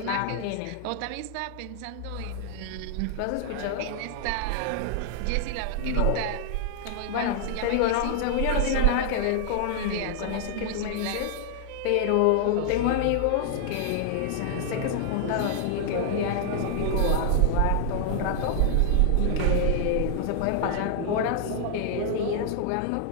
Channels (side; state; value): both; different; correlation 0.00